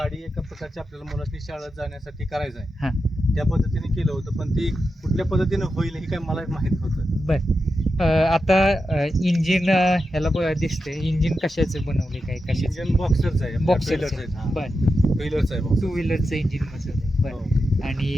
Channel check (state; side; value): normal; both; correlation 0.89